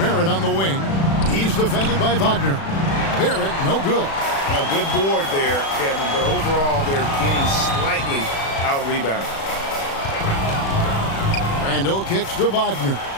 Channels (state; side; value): late; right; 36 ms